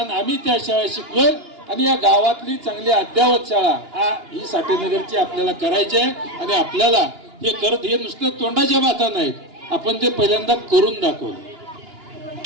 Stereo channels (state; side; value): late; left; 2.9 ms